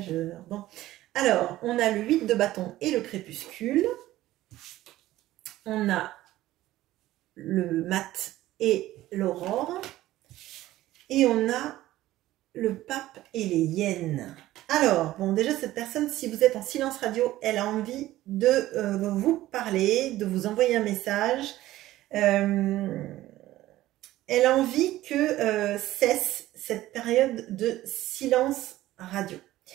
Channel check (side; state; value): left; quieter; 15.5 dB